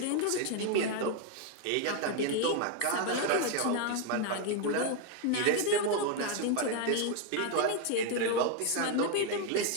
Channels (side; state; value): both; different; correlation 0.01